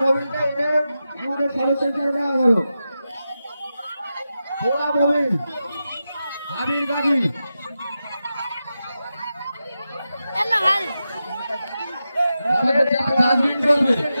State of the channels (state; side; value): inverted; both; correlation -0.91